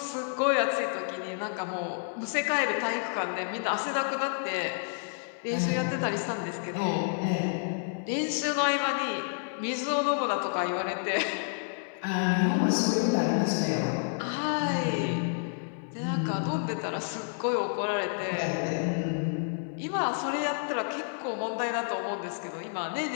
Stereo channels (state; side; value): silent; right; 58 dB below the other